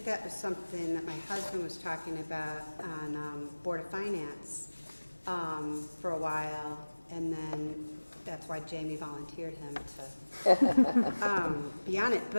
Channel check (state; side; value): inverted; both; correlation -1.00